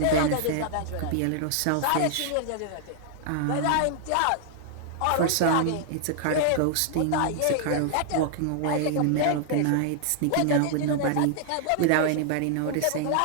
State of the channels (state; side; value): different; both; correlation -0.01